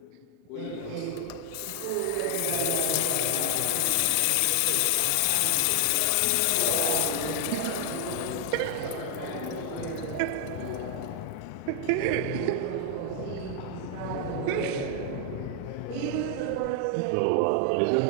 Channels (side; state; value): both; different; correlation 0.00